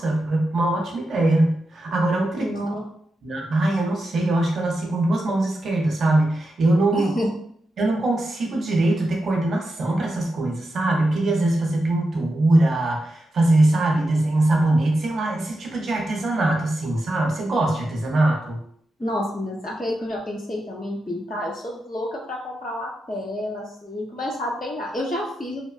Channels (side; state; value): both; normal; correlation 0.89